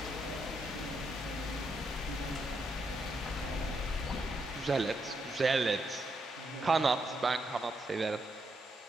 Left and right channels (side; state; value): both; normal; correlation 0.79